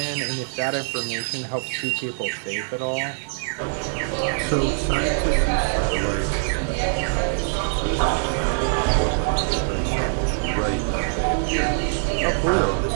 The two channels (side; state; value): left; silent; digital silence